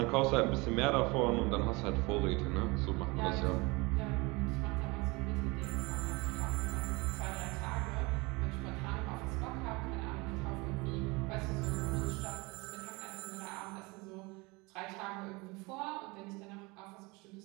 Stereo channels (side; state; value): left; quieter; 25.4 dB